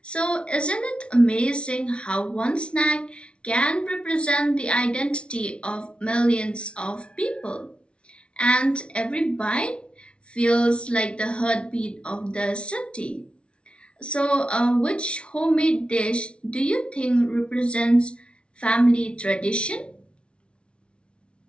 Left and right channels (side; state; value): right; late; 0.058 ms